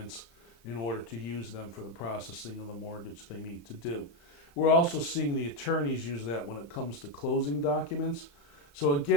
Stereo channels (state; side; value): late; right; 35 ms